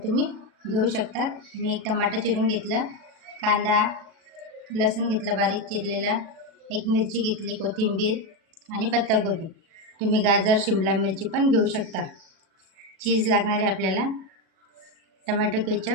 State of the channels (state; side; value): late; left; 37 ms